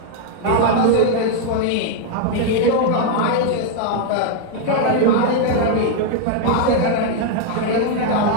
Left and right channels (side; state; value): both; different; correlation 0.00